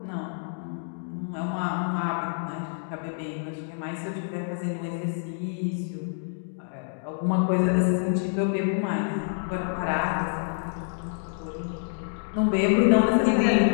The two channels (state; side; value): silent; right; digital silence